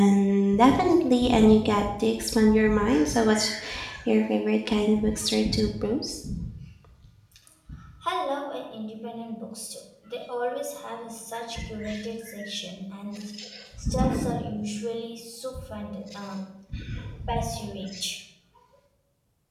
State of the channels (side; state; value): both; identical; correlation 1.00